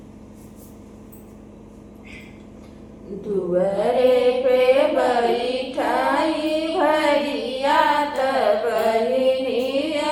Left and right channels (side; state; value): both; identical; correlation 1.00